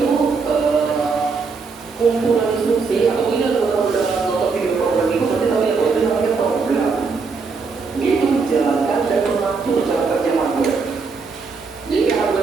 kumpulan instruksi atau ini kalau udah nonton video program itu pasti tahu ya bahwa itu namanya program. Dia itu menjalankan dan mengatur cara kerja hardware. Jadi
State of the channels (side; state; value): left; quieter; 4.7 dB